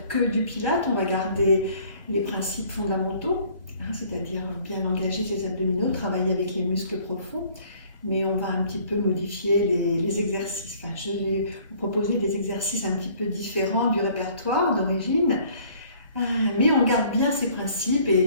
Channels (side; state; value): both; inverted; correlation -0.56